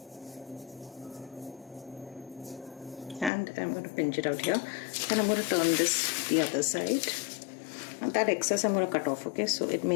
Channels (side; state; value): right; drops out; at 3.3 s